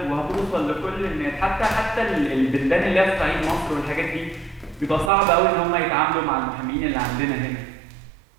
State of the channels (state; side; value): drops out; left; at 5.1 s